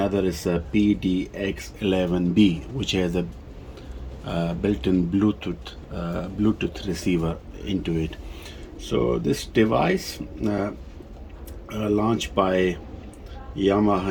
is a PDX-11B, which has a built-in Bluetooth receiver into it. So this device launched by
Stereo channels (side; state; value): both; identical; correlation 1.00